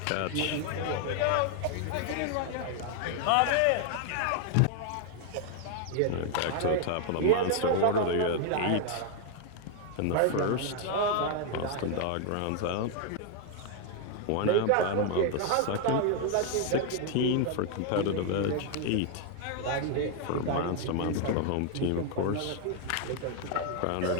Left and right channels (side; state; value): both; different; correlation 0.00